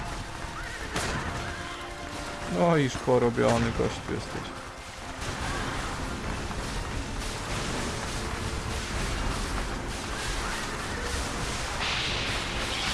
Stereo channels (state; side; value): identical; both; correlation 1.00